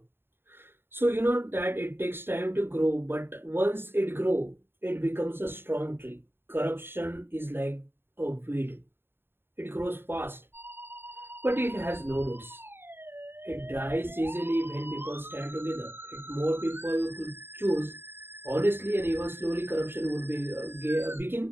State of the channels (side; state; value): left; late; 0.11 ms